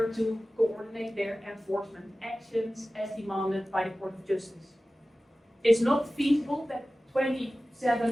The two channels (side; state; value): both; normal; correlation 0.96